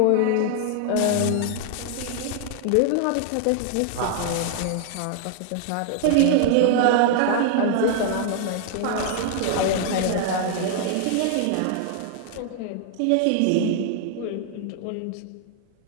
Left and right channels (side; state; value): both; different; correlation 0.00